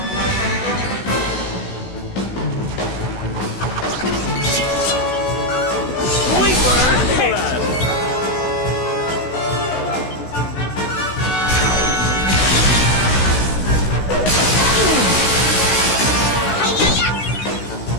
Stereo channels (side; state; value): right; late; 16 ms